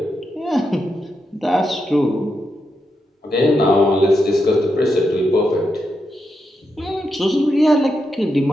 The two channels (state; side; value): normal; both; correlation 0.85